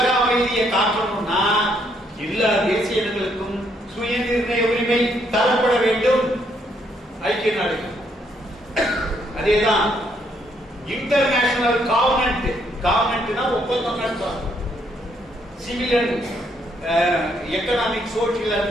அமைதியை காக்கணும்னா எல்லா தேசிய இனங்களுக்கும் சுயநிர்ணய உரிமை தரப்பட வேண்டும். ஐக்கிய நாடுகள் அதேதான். இன்டர்நேஷனல் காவனன்ட்னா ஒப்பந்தம் நடத்தும். Civil and economic, social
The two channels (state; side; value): normal; both; correlation 0.72